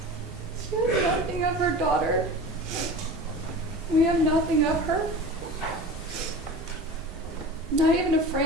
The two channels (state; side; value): normal; both; correlation 0.34